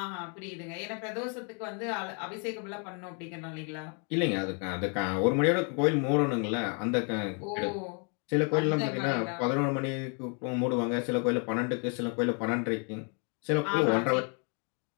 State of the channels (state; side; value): quieter; right; 38.3 dB